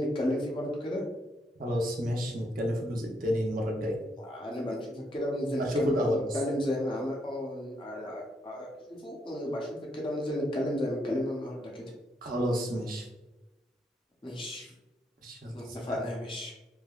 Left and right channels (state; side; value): normal; both; correlation 0.76